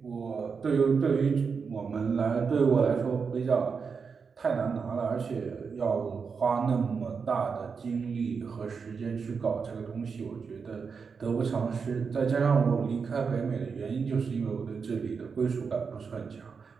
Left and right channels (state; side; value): quieter; left; 5.6 dB